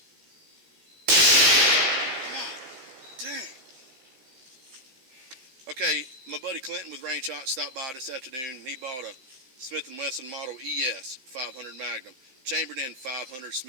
Dang. Okay, my buddy Clinton with Range Hot stopped by this afternoon, and he bought a Smith & Wesson Model ES 500 Magnum, chambered in 500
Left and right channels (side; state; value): left; late; 15 ms